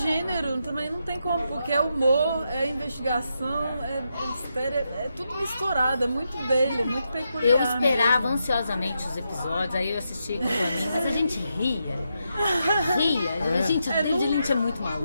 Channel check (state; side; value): inverted; both; correlation -0.84